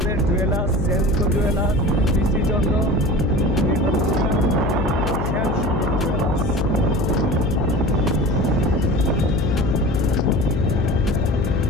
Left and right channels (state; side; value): noise; left; hum, 2 dB below the sound